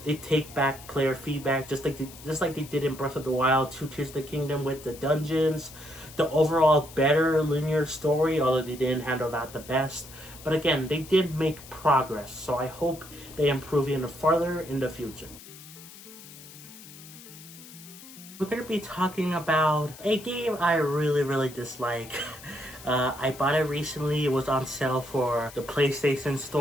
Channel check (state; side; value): noise; left; hiss, 17 dB below the sound